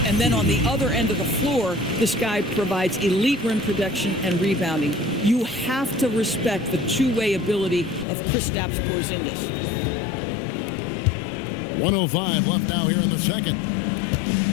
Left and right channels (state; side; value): drops out; right; at 8.1 s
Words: And then on the other end of the floor, this guy provides elite rim protection and rebounding. You have to respect the two-way ability of Kristaps Porzingis. 1:05 left now here in the second.